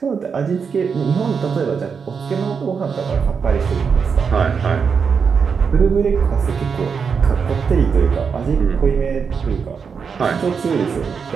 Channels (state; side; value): quieter; left; 6.0 dB